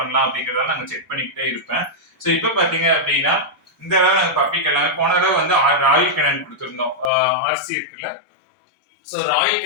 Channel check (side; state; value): right; drops out; at 7.1 s